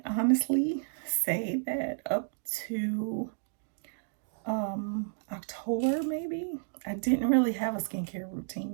honestly say that up to October, maybe. I didn't really have a skincare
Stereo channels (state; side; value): silent; left; digital silence